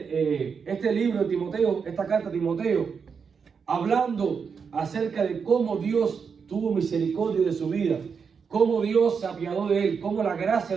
libro de Timoteo, esta carta a Timoteo, hablando acerca de cómo Dios tuvo misericordia de su vida, cómo Dios se apiadó de él, cómo la gracia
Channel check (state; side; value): quieter; left; 6.0 dB